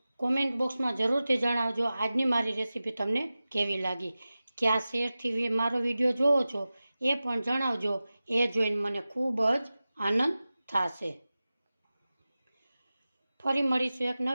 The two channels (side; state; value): both; inverted; correlation -0.96